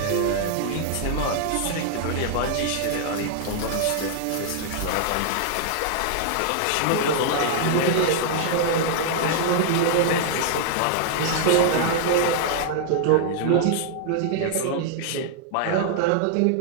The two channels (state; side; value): different; both; correlation -0.01